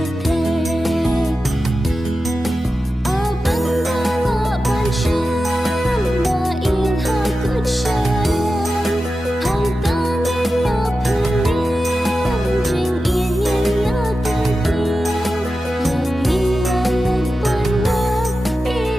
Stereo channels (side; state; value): both; normal; correlation 0.92